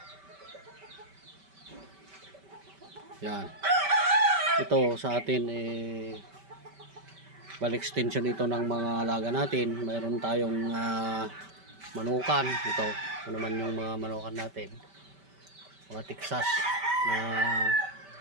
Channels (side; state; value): left; late; 5.1 ms